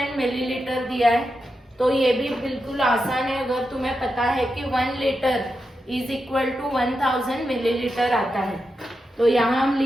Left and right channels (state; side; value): normal; both; correlation 0.88